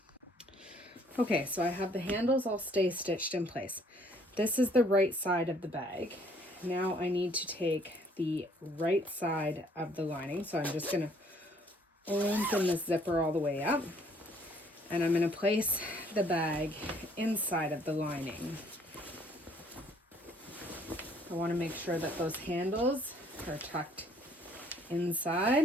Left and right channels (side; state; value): both; normal; correlation 0.62